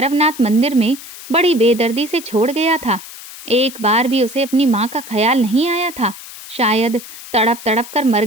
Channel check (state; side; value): noise; left; hiss, 15 dB below the sound